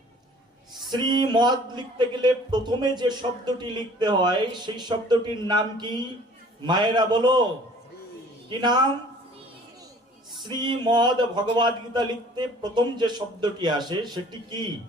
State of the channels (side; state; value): both; normal; correlation 0.52